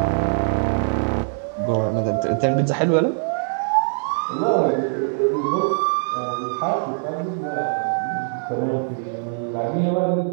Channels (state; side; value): silent; left; digital silence